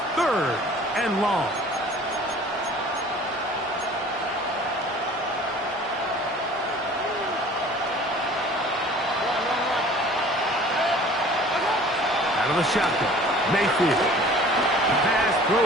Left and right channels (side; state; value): both; normal; correlation 0.48